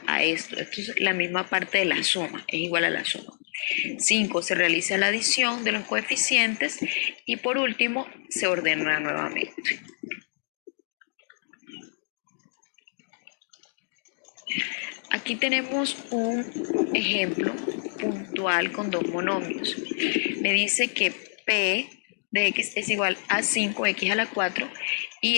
a esto. Esto es la misma parte de la suma, es igual a la suma. 5. Se realiza la adición de los coeficientes y por último se ordena nuevamente. Aquí tenemos un ejemplo puntual con dos monomios. Me dice que P de x es igual a 5x a la 4 y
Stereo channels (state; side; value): silent; right; digital silence